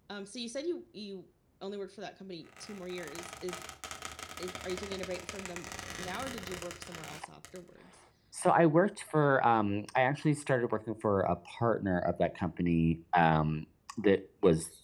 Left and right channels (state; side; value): identical; both; correlation 1.00